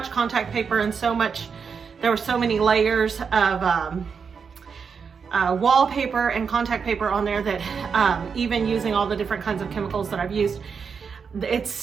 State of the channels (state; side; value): quieter; left; 6.0 dB